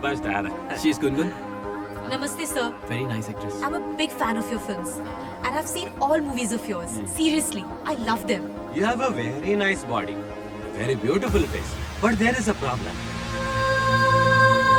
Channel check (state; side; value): identical; both; correlation 1.00